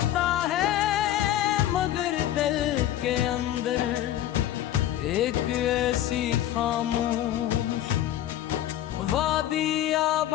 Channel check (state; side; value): quieter; right; 12.6 dB